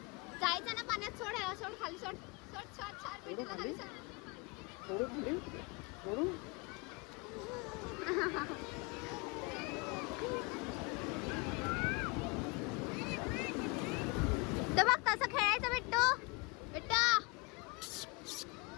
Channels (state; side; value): quieter; right; 27.8 dB